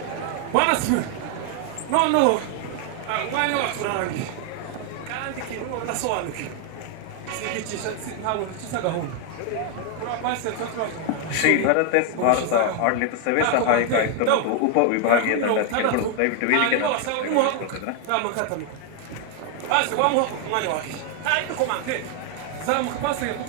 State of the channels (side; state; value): both; different; correlation 0.00